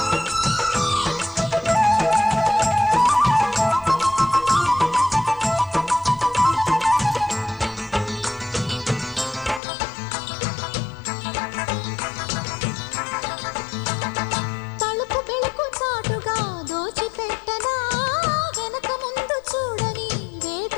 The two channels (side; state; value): right; drops out; at 9.6 s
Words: తలుపు బెళకు చాటుగా దోచిపెట్టనా వెనక ముందు చూడని